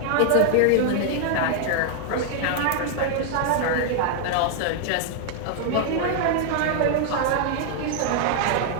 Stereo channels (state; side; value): different; both; correlation 0.00